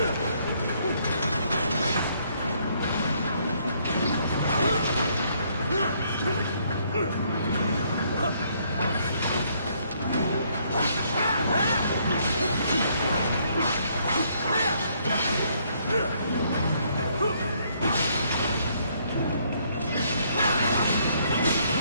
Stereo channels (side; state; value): both; inverted; correlation -0.68